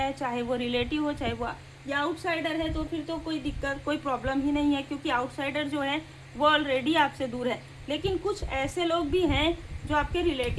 है, चाहे वो रिलेटिव हो चाहे वो या आउटसाइडर है, तो फिर तो कोई दिक्कत कोई प्रॉब्लम ही नहीं है, क्योंकि आउटसाइडर जो है वो ऑलरेडी आपसे दूर है। लेकिन कुछ ऐसे लोग भी हैं जो आपके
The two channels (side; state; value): both; identical; correlation 1.00